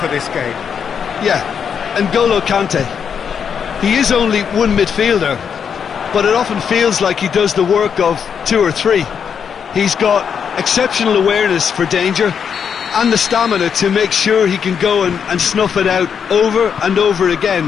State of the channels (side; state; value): right; quieter; 7.2 dB